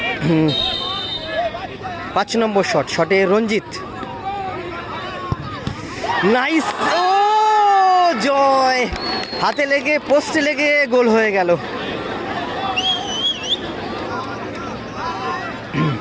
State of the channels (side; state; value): both; identical; correlation 1.00